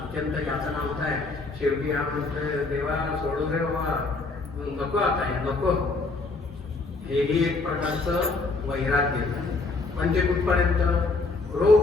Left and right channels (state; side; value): quieter; right; 3.6 dB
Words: यातना होत आहे. शेवटी हा म्हणतोय देवा सोडू दे बाबा, नको आता हे नको. हेही एक प्रकारचं वैराग्य. पण ते कुठपर्यंत रोग